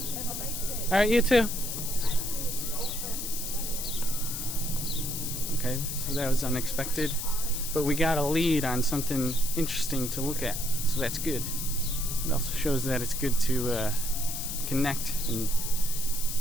All right, you too. Okay, so that was unexpected, but we got a lead on something interesting to look at, so that's good. It also shows that it's good to connect, and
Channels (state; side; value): noise; left; hiss, 4 dB below the sound